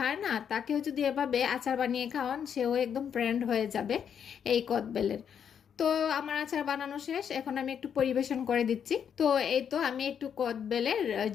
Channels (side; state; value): right; quieter; 8.0 dB